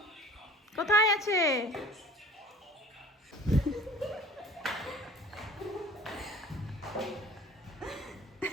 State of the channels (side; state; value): both; normal; correlation 0.45